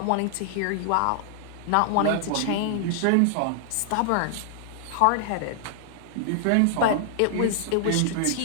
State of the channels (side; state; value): both; different; correlation -0.01